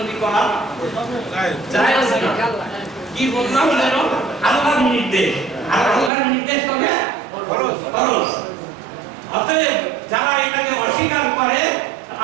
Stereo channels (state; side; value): drops out; left; at 6.1 s